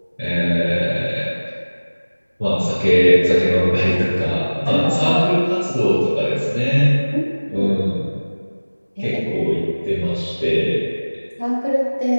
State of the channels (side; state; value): both; inverted; correlation -1.00